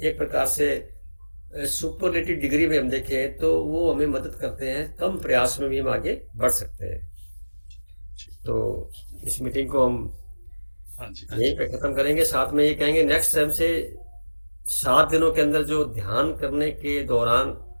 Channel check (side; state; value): both; inverted; correlation -1.00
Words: प्रकार से सुपरलेटिव डिग्री में हम देखें तो वो हमें मदद करते हैं, कम प्रयास में भी हम आगे बढ़ सकते हैं। तो इस मीटिंग को हम यहीं पे खत्म करेंगे। साथ में ये कहेंगे नेक्स्ट टाइम से 7 दिनों के अंदर जो ध्यान करने के दौरान